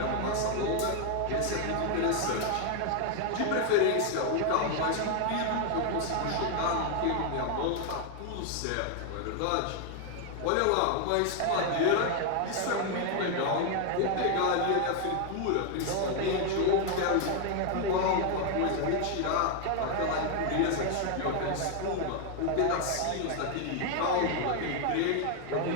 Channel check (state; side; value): different; both; correlation 0.00